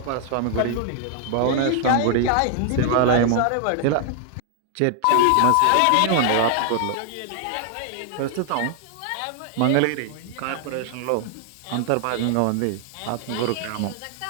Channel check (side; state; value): both; different; correlation 0.00